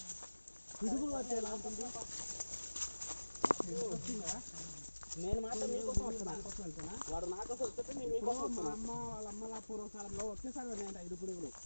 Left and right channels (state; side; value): inverted; both; correlation -1.00